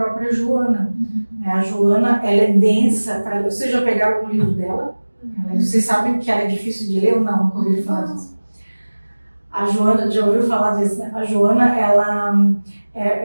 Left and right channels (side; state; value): both; inverted; correlation -1.00